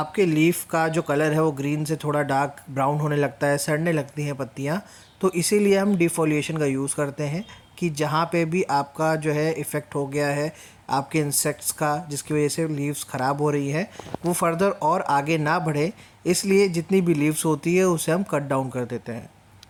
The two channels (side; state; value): both; identical; correlation 1.00